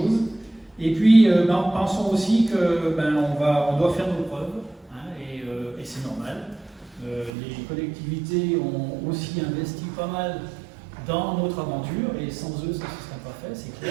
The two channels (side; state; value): left; drops out; at 7.3 s